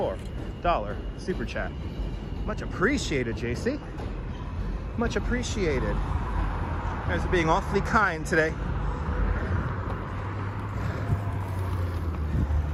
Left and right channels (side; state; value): both; identical; correlation 1.00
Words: super chat. Much appreciated, JC. Much appreciated. You guys are being awfully kind today.